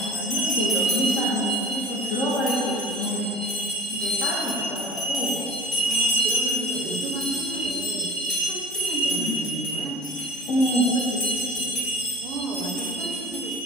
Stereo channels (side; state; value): both; normal; correlation 0.42